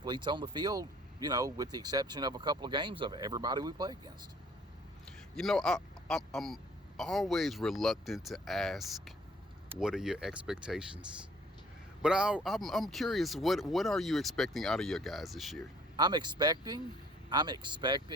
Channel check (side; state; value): both; normal; correlation 0.57